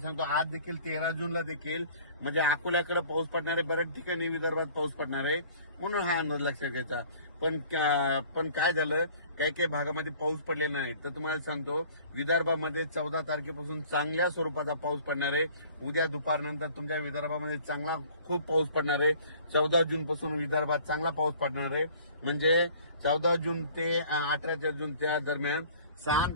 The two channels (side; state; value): both; inverted; correlation -0.51